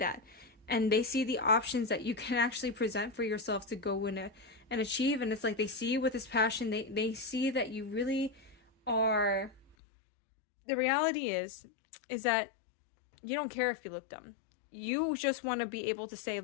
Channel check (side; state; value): right; drops out; at 9.8 s